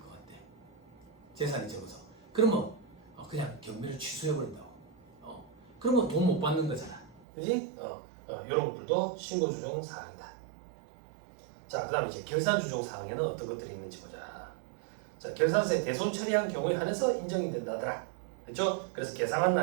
같아. 재산이 적어서. 그러면 그냥 경매를 취소해버린다고. 그러면 돈 못 받는 거잖아. 그지? 이런 것들도 신고 조정 사항이다. 자, 그 다음 이제 결산 조정 사항에는 어떤 것들이 있는지 보자. 자, 결산세 대손 처리한 경우에 한해서 인정이 된다더라. 그렇죠? 그래서 계상한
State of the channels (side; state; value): left; drops out; at 7.2 s